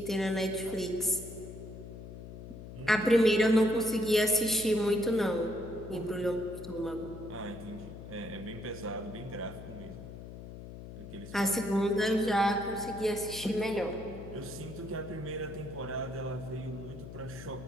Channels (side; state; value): left; noise; hum, 12 dB below the sound